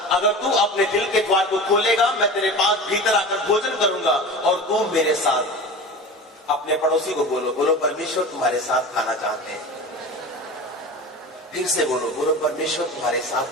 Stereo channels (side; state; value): both; normal; correlation 0.33